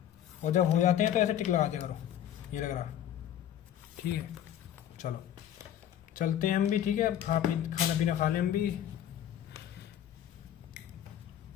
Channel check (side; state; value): right; quieter; 10.7 dB